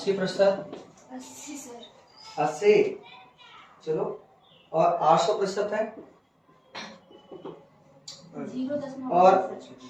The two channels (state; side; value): identical; both; correlation 1.00